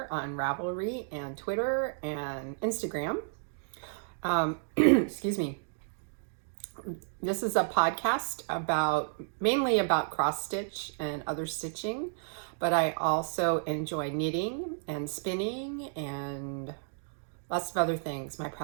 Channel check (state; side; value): silent; left; digital silence